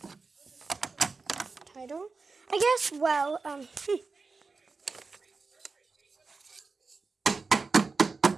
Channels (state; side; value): quieter; left; 4.2 dB